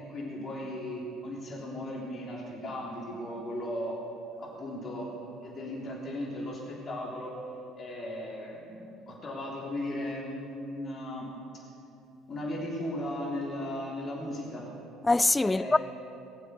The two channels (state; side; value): normal; both; correlation 0.82